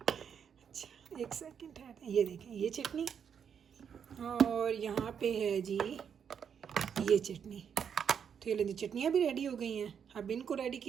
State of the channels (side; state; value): left; quieter; 7.6 dB